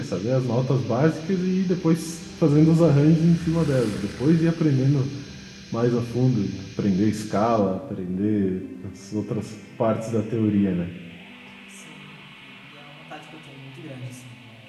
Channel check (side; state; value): both; identical; correlation 1.00